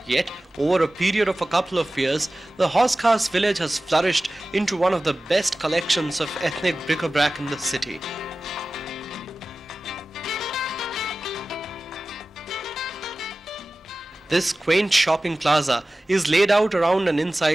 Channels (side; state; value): both; normal; correlation 0.96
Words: Yet, over a period of a couple of years, the Hauz Khas village has flourished into one of the best collections of ethnic bric-a-brac in the city. This quaint shopping plaza is laid out around and